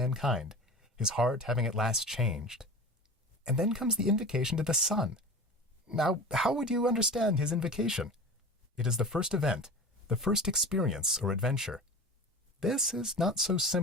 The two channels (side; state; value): both; normal; correlation 0.34